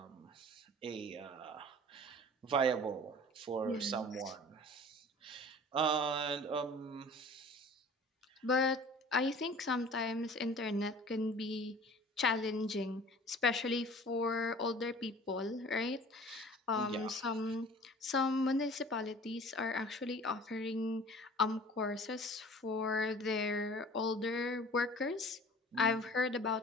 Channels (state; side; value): normal; both; correlation 0.45